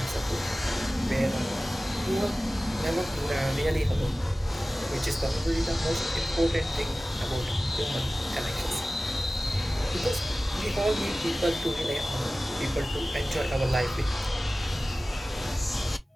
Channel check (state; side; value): normal; both; correlation 0.97